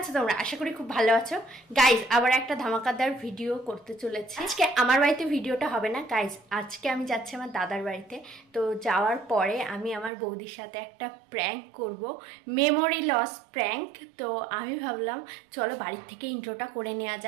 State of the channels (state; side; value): drops out; left; at 10.1 s